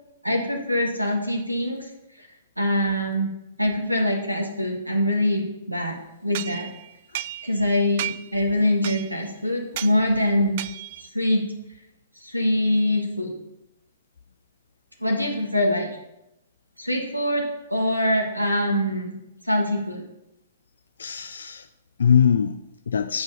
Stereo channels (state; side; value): inverted; both; correlation -0.77